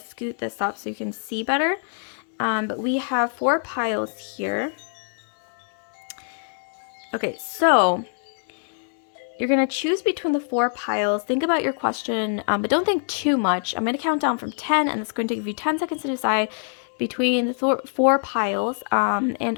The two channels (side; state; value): right; silent; 62 dB below the other